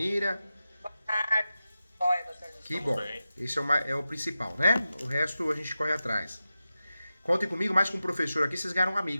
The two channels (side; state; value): both; inverted; correlation -0.93